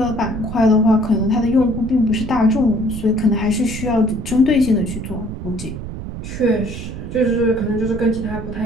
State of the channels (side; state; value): right; noise; rumble, 8 dB below the sound